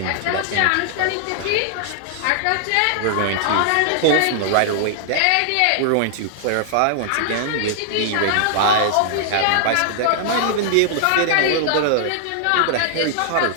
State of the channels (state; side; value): different; both; correlation -0.01